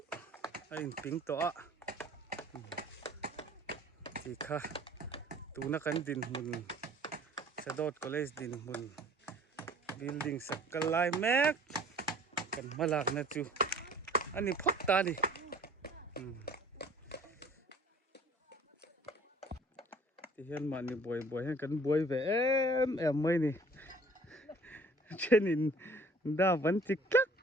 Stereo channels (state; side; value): normal; both; correlation 0.52